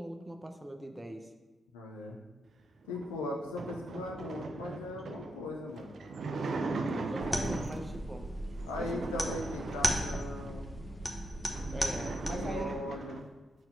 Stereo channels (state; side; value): normal; both; correlation 0.84